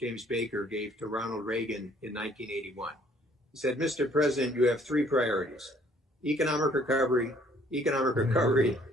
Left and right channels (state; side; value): normal; both; correlation 0.61